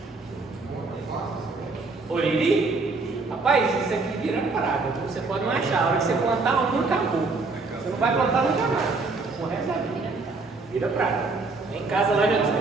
Oriri? Rapaz, isso aqui vira parada. Você pode não achar. A hora que você plantar, nunca acabou. Você não vai plantar nunca mais. O resto da vida. Vira prata. Em casa lá já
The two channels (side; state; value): left; quieter; 3.8 dB